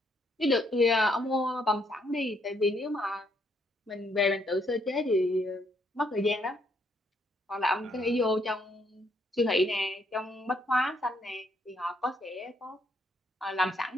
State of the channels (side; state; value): both; normal; correlation 0.72